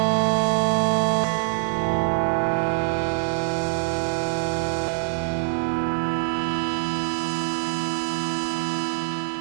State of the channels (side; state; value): left; silent; 55 dB below the other